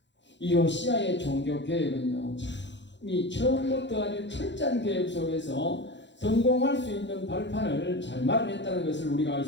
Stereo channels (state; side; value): late; right; 0.52 ms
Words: 이 요시야의 종교 계획은요, 이 처음부터 아주 철저한 계획 속에서 성공할 수 있는 발판을 잘 마련했다는 것을 우리가 알